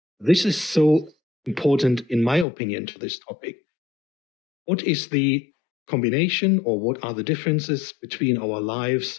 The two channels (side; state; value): right; drops out; at 2.5 s